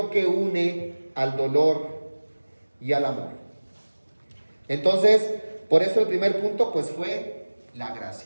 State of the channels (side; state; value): both; inverted; correlation -1.00